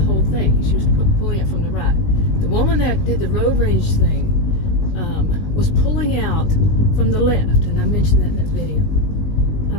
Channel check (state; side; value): late; right; 20 ms